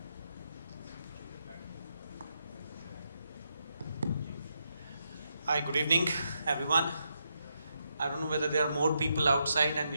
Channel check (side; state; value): both; inverted; correlation -0.82